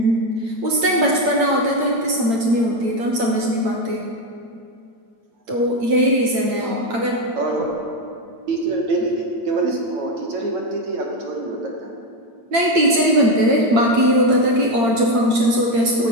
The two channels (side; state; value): left; late; 8.8 ms